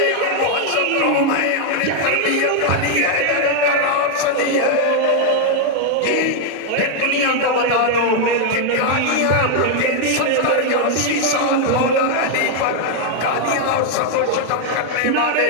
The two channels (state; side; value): different; both; correlation 0.00